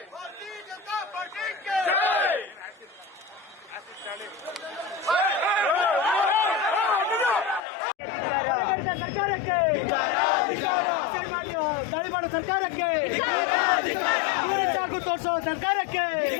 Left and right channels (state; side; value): drops out; right; at 7.6 s